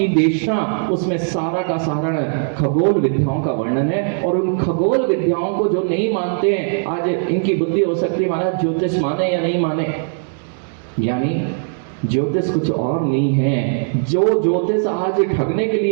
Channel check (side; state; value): left; silent; digital silence